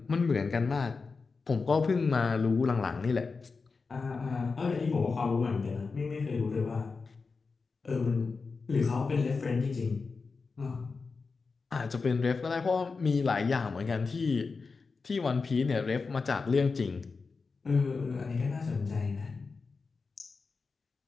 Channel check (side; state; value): right; quieter; 4.5 dB